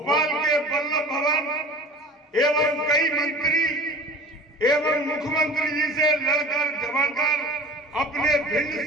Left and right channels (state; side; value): normal; both; correlation 0.41